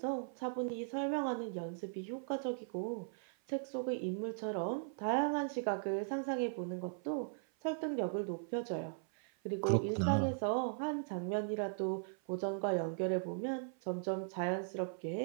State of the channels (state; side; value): silent; left; 52 dB below the other